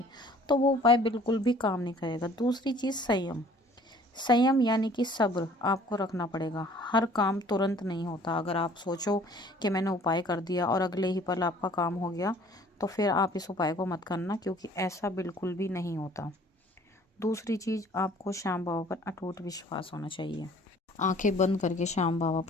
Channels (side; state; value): both; normal; correlation 0.54